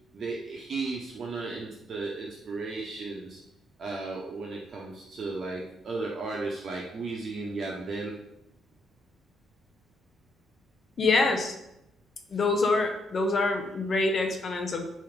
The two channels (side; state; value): both; normal; correlation 0.75